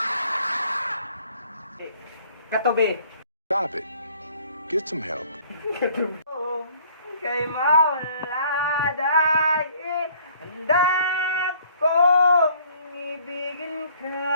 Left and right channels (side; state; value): both; inverted; correlation -0.57